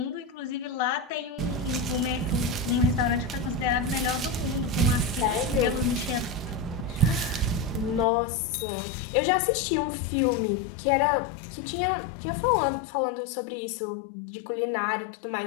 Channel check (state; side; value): drops out; right; at 8.1 s